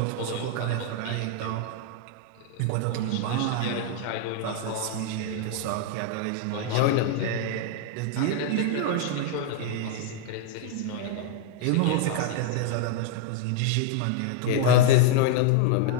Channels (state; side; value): different; both; correlation 0.00